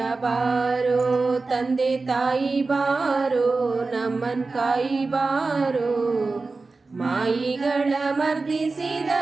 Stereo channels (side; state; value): left; quieter; 3.8 dB